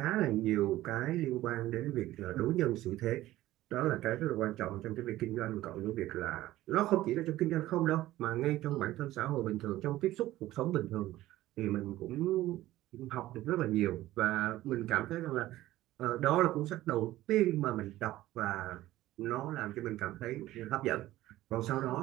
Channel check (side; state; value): left; quieter; 15.6 dB